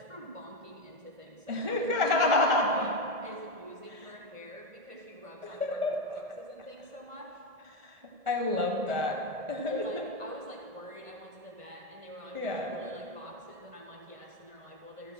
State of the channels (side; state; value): left; late; 1.4 ms